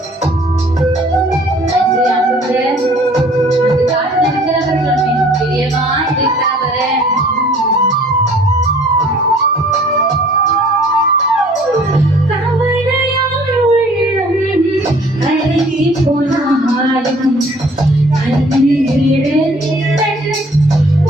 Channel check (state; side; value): normal; both; correlation 0.54